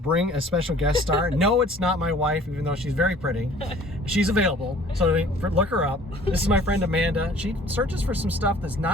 a special guest star. No, it's not my wife, even though she's very pretty. She's available, so look her up. This is my friend Amanda. She searches for some stuff that's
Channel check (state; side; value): normal; both; correlation 0.51